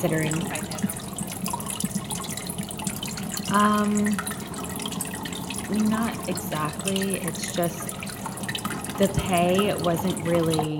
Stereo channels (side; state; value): both; identical; correlation 1.00